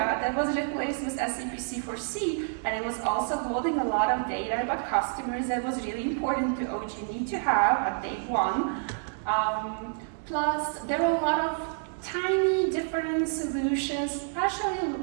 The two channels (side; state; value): left; silent; 59 dB below the other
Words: that was replaced with SAP C4C, and it was also holding a lot of data about customers that was really important to OG&E to have at day one. Plus, there were a lot of tiny different solutions, partially